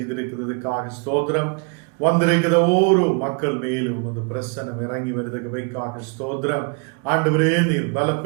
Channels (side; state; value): left; quieter; 35.4 dB